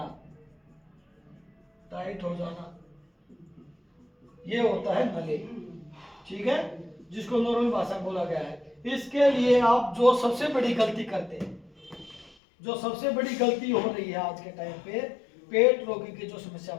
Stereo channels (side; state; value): right; drops out; at 12.4 s